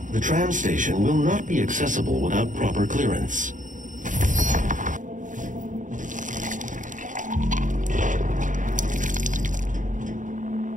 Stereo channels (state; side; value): late; left; 0.37 ms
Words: The tram station will not be accessible without proper clearance.